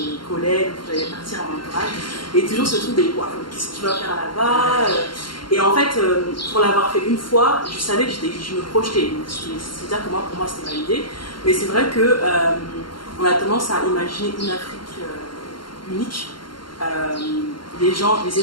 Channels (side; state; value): right; late; 0.72 ms